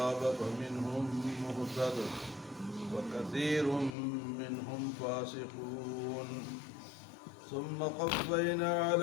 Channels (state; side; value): drops out; right; at 3.9 s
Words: فمنهم مهتد وكثير منهم فاسقون. ثم قفينا